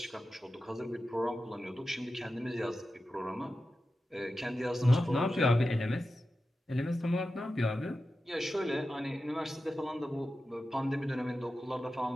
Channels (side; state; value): both; normal; correlation 0.92